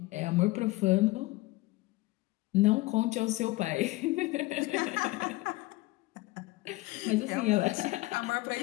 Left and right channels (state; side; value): quieter; right; 20.5 dB